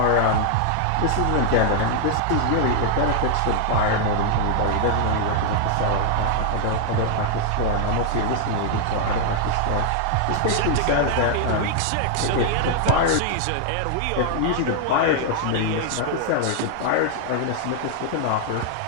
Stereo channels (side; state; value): both; different; correlation -0.01